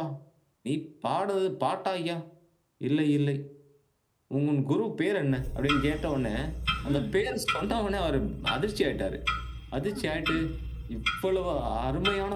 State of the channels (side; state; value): both; identical; correlation 1.00